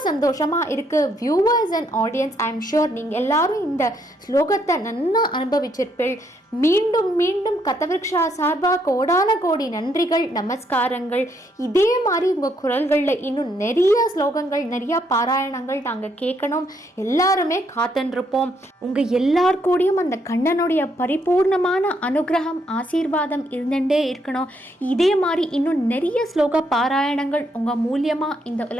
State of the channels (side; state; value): both; normal; correlation 0.73